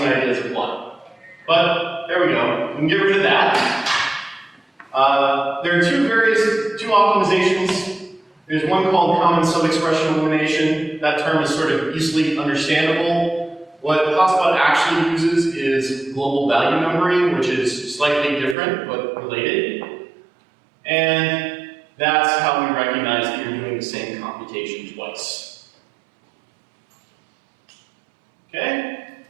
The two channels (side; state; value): left; drops out; at 18.6 s